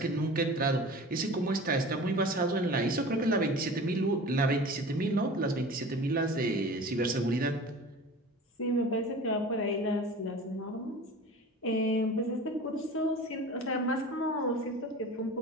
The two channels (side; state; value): both; normal; correlation 0.38